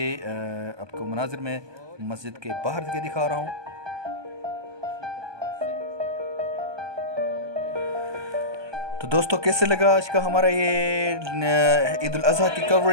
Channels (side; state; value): left; late; 1.2 ms